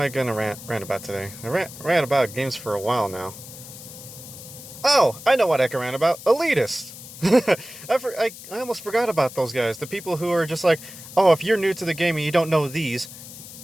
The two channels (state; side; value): noise; left; hiss, 15 dB below the sound